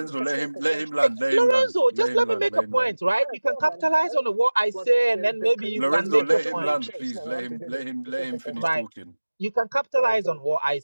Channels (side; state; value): both; inverted; correlation -1.00